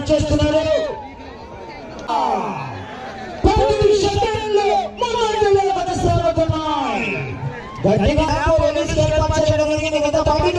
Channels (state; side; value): identical; both; correlation 1.00